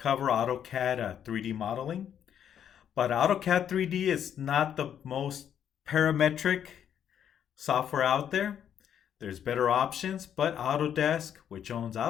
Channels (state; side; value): quieter; right; 9.2 dB